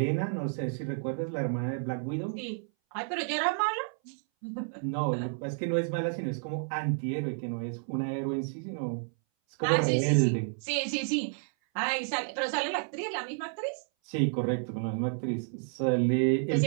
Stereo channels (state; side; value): silent; left; 57 dB below the other